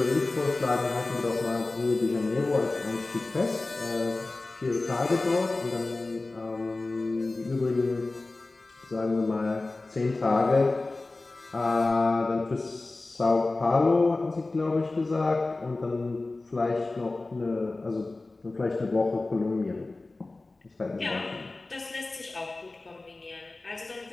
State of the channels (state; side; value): quieter; right; 3.2 dB